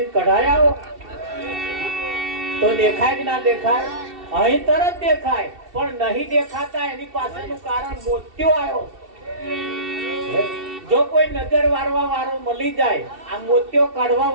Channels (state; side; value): late; left; 2.7 ms